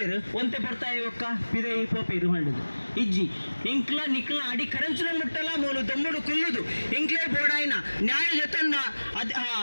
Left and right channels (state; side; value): inverted; both; correlation -1.00